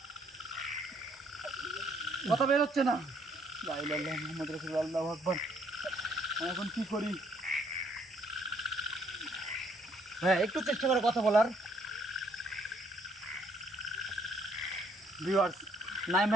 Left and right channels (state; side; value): normal; both; correlation 0.67